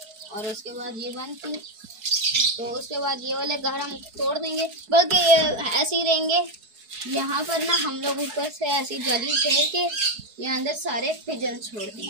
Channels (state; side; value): late; left; 4.7 ms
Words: और उसके बाद ये बंद की, तो उसके बाद ये वाले घर हम तोड़ देंगे, बल्कि ये ऐसे ही रहेंगे। यहाँ पर ना हम लोग ऊपर से ऐसी जाली फेर के यहाँ अंदर सारे पिजन छोड़